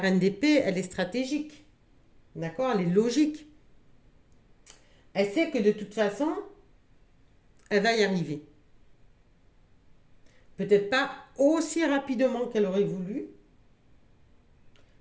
d'épée, elle est stratégique. D'accord? Elle est logique. Elle sait que de toute façon, elle va y arriver. Peut-être pas aussi rapidement qu'elle aurait voulu,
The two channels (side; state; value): both; identical; correlation 1.00